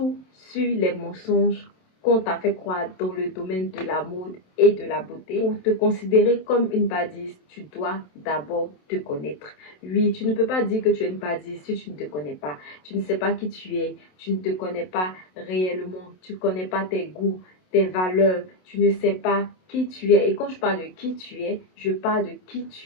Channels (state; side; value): late; right; 27 ms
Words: sur les mensonges qu'on t'a fait croire dans le domaine de la mode et de la beauté. Pour te considérer comme une badise, tu dois d'abord te connaître. Oui, tu ne peux pas dire que tu es une badise si tu ne te connais pas. Tu ne sais pas qui tu es, tu ne te connais pas réellement, tu ne connais pas tes goûts, tes valeurs, tu ne sais pas qui tu es. Et quand je parle de qui tu es, je parle de qui